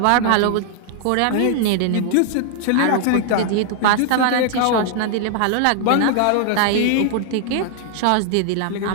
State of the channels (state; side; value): different; both; correlation 0.00